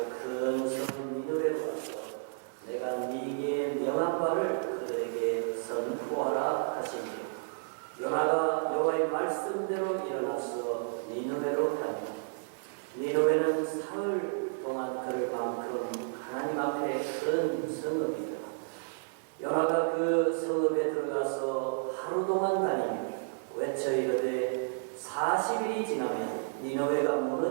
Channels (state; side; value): silent; left; digital silence